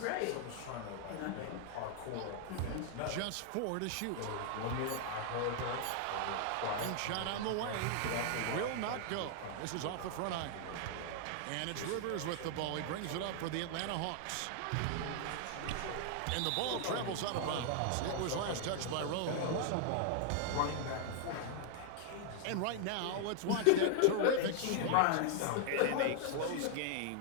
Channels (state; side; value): different; both; correlation 0.00